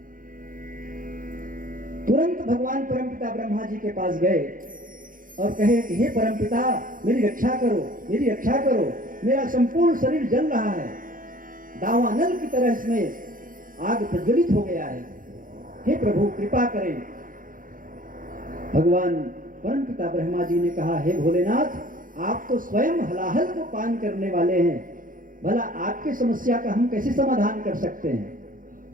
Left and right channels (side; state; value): left; late; 0.40 ms